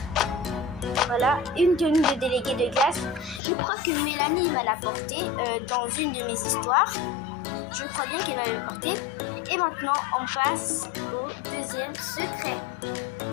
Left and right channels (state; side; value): drops out; right; at 3.4 s